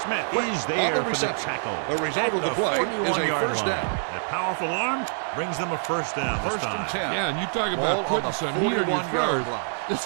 Smith is there for the tackle. The result of the play is a first down. That powerful arm brings them a first down this 1st time. and 10. Yeah, and you talk Ball about putting on the some heat on your 41-yard throws. line. This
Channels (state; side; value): silent; left; 61 dB below the other